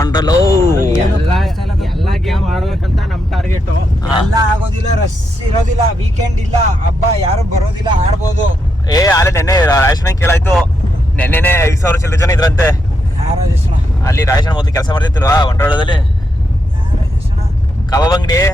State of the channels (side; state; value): both; normal; correlation 0.82